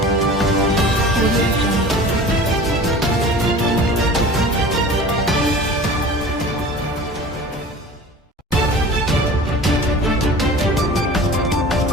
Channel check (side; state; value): both; normal; correlation 0.40